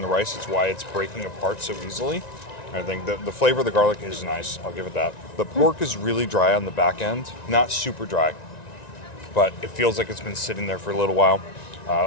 the rice. It's why it's breaking apart so easily. I think the flavor of the garlic is nice. I'll give it that. The pork is really dry on the back end, not super dry, but it feels like it's been sitting there for a little while.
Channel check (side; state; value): right; late; 1.9 ms